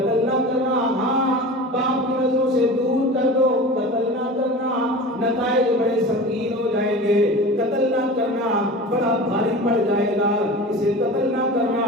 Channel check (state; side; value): normal; both; correlation 0.34